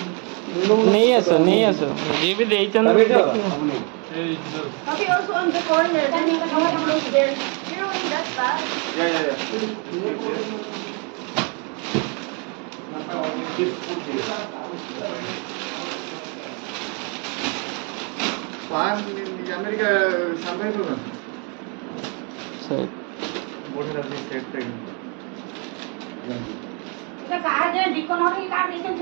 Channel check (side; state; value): left; quieter; 35.3 dB